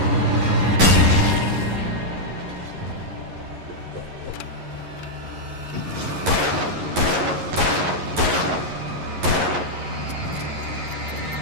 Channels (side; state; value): left; late; 11 ms